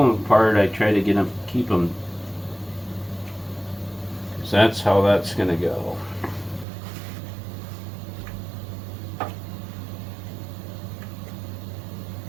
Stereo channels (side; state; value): left; drops out; at 6.7 s